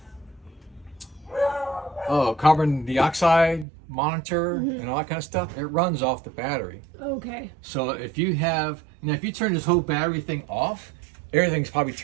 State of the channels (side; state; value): left; drops out; at 3.7 s